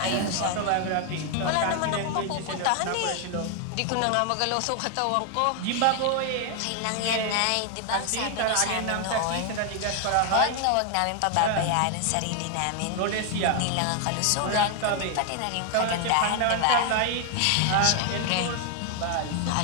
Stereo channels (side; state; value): both; different; correlation 0.00